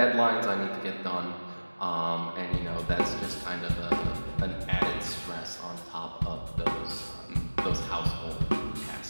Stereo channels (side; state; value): both; inverted; correlation -1.00